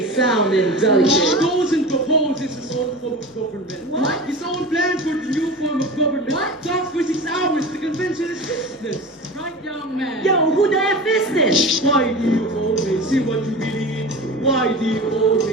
sound indelicate. Goes and proposes his own form of government. What? His own plan for the new form of government. What? Talks for 6 hours. The convention is business. Right, young man. Yo, who the F is this? Why do you always say what you believe? Why do you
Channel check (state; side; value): normal; both; correlation 0.32